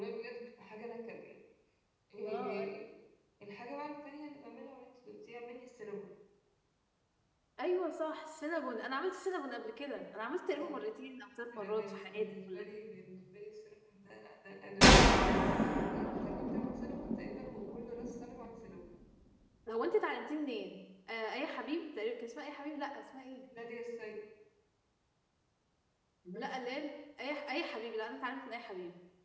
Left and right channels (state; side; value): identical; both; correlation 1.00